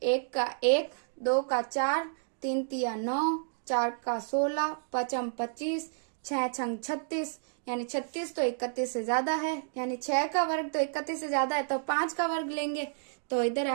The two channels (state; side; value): silent; left; digital silence